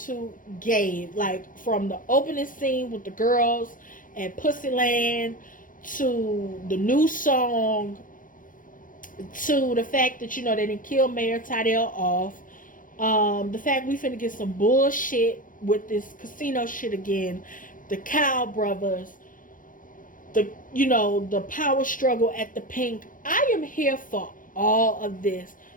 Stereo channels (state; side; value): late; right; 0.39 ms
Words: gave, like, from the opening scene with the girls and Pussyland to the new song to the fact that they didn't kill Mayor Tydell off. The fact we finna get some bullshit with this casino shit again. The Cow Brothers. The power struggle at the Pink. I am here for all of this.